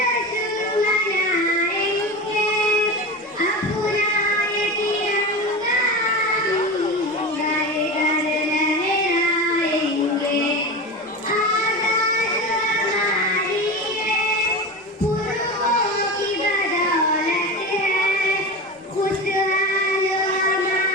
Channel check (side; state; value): both; normal; correlation 0.25